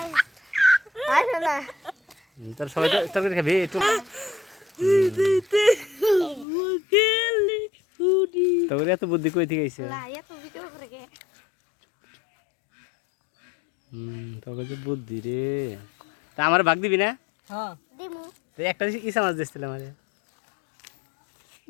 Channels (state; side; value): drops out; right; at 6.5 s